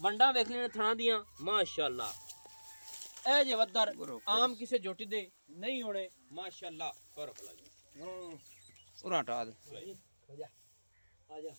वंडा वेख लेने थां दियां माशाअल्लाह ए जे वद्दर आम किसे जोटी दे नहीं होने माशाअल्लाह पर भला जी उरा हटा दे आजा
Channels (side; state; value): both; inverted; correlation -1.00